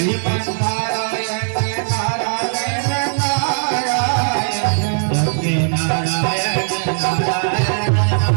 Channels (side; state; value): left; silent; 67 dB below the other